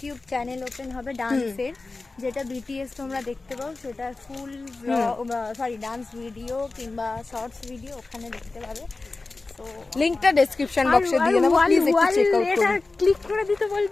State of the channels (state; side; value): quieter; right; 3.5 dB